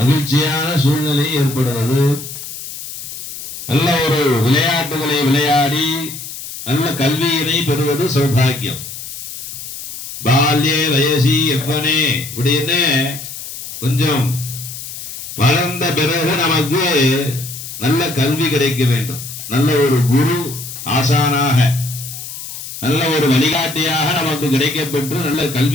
சூழ்நிலை ஏற்படுவது, நல்ல ஒரு விளையாட்டுகளை விளையாடி நல்ல கல்வியினை பெறுவது சௌபாகியம். பால்யே வயசி எவ்வனே அப்படின்னு கொஞ்சம் வளர்ந்த பிறகு நமக்கு நல்ல கல்வி கிடைக்க வேண்டும். நல்ல ஒரு குரு ஆசானாக நல்ல ஒரு வழிகாட்டியாக நமக்கு கிடைக்கப்பெற்று நல்ல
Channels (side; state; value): left; noise; hiss, 10 dB below the sound